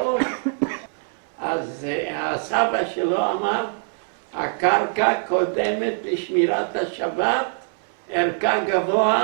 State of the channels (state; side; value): silent; left; 62 dB below the other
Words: אז הסבא שלו אמר, הקרקע קודמת לשמירת השבת, ערכה